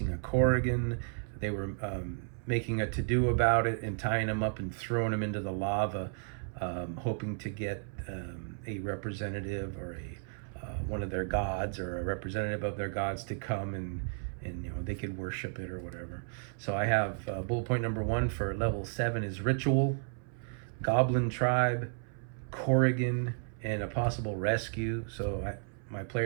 a Corrigan. They were making a to-do about it and tying them up and throwing them into the lava, hoping to get a representative or one of their gods, or a representative of their gods, to come and they could worship it or whatever. So I have bullet point number 1 for level 7 is ritual, goblin tribe, Corrigan, and a possible rescue. So my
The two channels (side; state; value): left; silent; 56 dB below the other